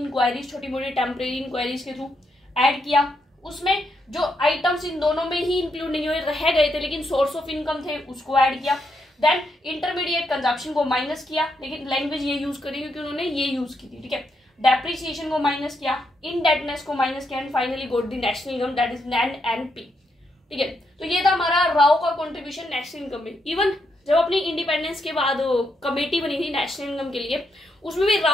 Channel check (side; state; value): both; normal; correlation 0.80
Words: छोटी मोटी टेम्परेरी इंक्वायरीज के थ्रू ऐड किया। उसमें जो आइटम्स इन दोनों में ही इंक्लूड नहीं हुए, रह गए थे लेकिन सोर्स ऑफ इनकम थे, उसको ऐड किया। देन इंटरमीडिएट कंजप्शन को माइनस किया, लेकिन लैंग्वेज ये यूज करी क्योंकि उन्होंने ये यूज की थी, ठीक है। डेप्रिसिएशन को माइनस किया, इनडेटनेस को माइनस किया, and finally goat the national income, that is NNP, ठीक है। तो ये था हमारा राव का कंट्रीब्यूशन नेशनल इनकम में। इवन जब अपनी इंडिपेंडेंस के बाद कमेटी बनी थी नेशनल इनकम के लिए, उसमें भी